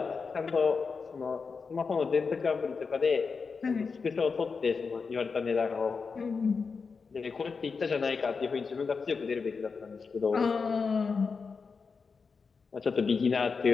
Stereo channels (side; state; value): right; quieter; 5.0 dB